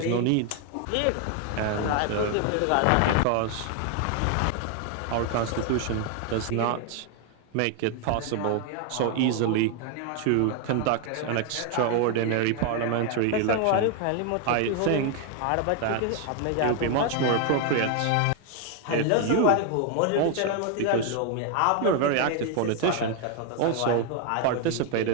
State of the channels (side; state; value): both; different; correlation 0.01